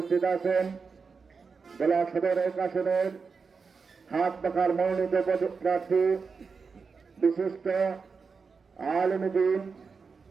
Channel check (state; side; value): quieter; left; 5.1 dB